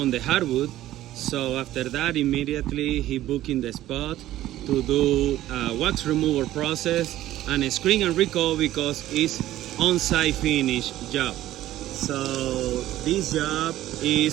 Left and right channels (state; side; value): quieter; left; 14.2 dB